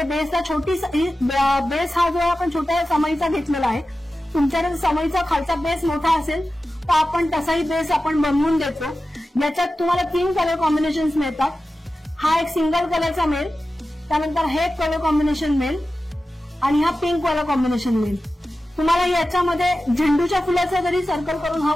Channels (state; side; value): normal; both; correlation 0.94